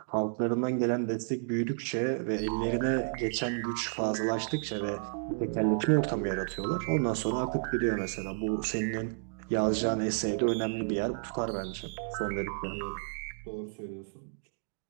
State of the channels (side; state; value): left; silent; digital silence